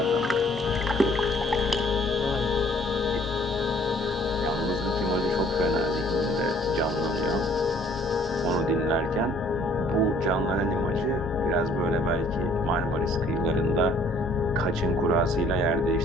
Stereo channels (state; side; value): normal; both; correlation 0.58